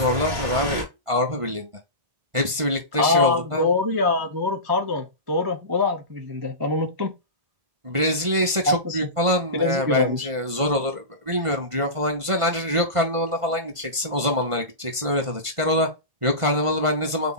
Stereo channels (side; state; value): left; late; 1.5 ms